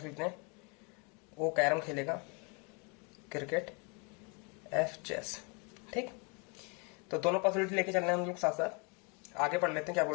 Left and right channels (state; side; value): quieter; right; 33.2 dB